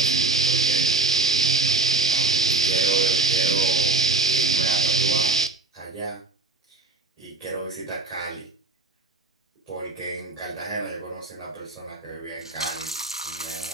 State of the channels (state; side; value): quieter; left; 3.4 dB